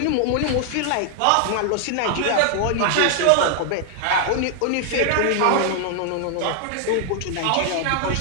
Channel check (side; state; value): both; different; correlation 0.00